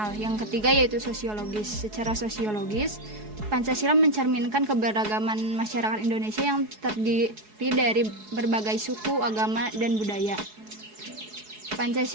Yang ketiga yaitu sosiologis. Secara sosiologis, Pancasila mencerminkan keberagaman masyarakat Indonesia yang terdiri dari berbagai suku, agama, dan budaya.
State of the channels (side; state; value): left; late; 4.7 ms